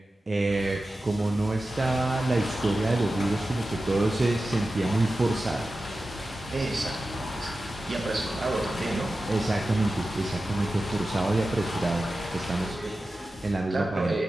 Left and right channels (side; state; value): both; normal; correlation 0.94